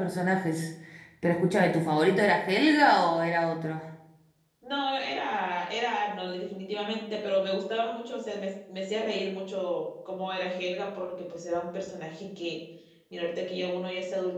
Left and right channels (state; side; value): identical; both; correlation 1.00